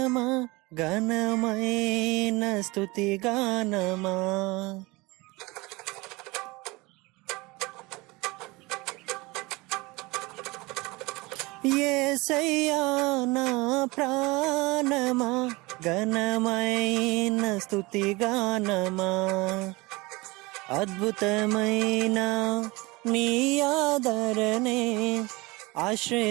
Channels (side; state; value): left; quieter; 23.5 dB